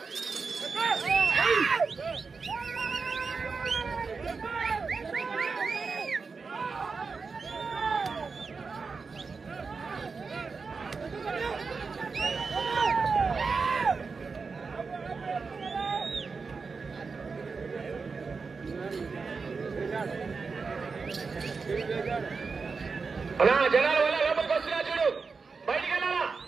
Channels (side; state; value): left; quieter; 4.8 dB